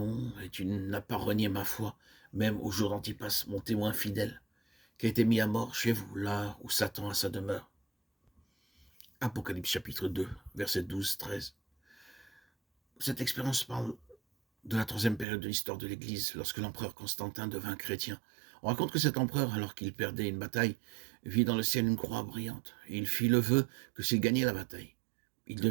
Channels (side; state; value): left; drops out; at 15.2 s